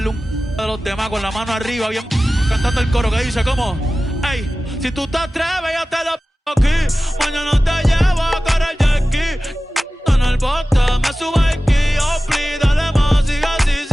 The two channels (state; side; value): normal; both; correlation 0.96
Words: un de los demás, con la mano arriba, bien cantando el coro que dice, ¿cómo? Ey, si tú te atreves, yo te lo aquí. Mañana te llevo a correr jet ski. En el bote, me subo aquí. Oh, please, dale más, sigue